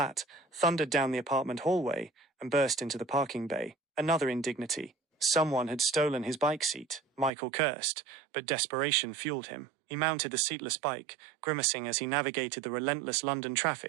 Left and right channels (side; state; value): left; drops out; at 7.3 s